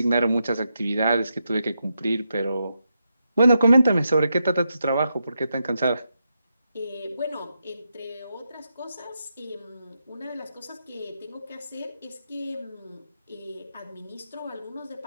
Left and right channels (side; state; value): both; inverted; correlation -0.85